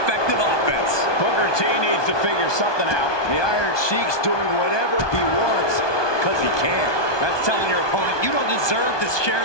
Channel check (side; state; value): right; late; 1.2 ms